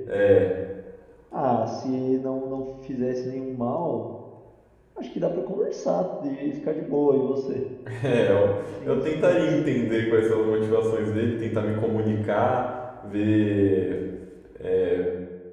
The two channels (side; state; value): both; identical; correlation 1.00